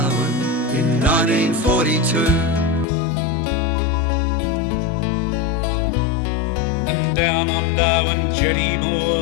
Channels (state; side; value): drops out; right; at 2.9 s